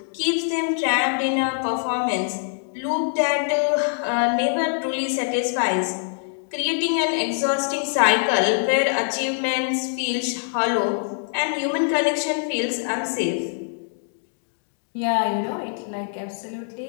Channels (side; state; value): right; silent; digital silence